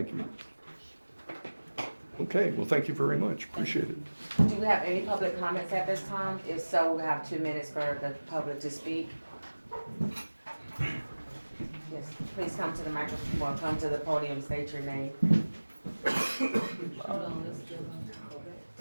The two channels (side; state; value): both; inverted; correlation -1.00